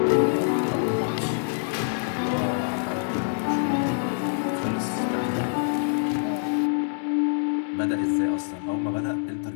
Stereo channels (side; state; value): right; silent; digital silence